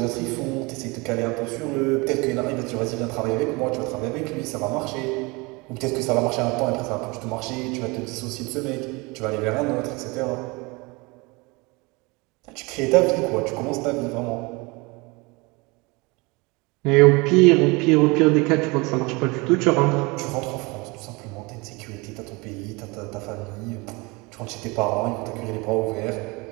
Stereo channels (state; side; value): quieter; left; 26.1 dB